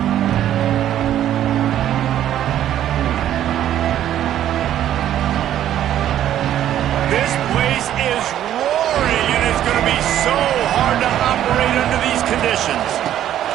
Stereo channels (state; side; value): quieter; left; 11.5 dB